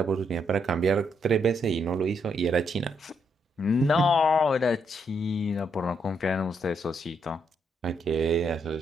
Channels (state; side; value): normal; both; correlation 0.77